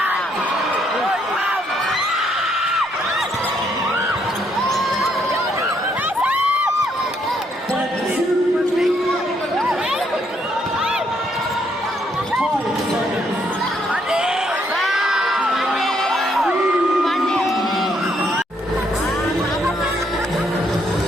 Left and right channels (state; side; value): normal; both; correlation 0.72